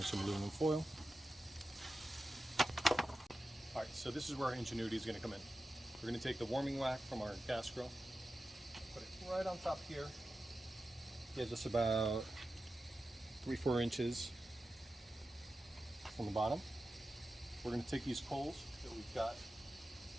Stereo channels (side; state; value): both; normal; correlation 0.92